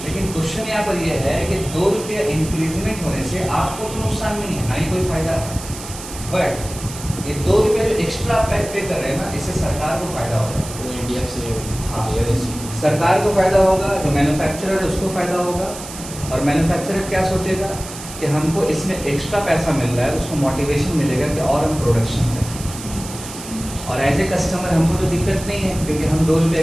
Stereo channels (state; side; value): noise; right; hiss, 12 dB below the sound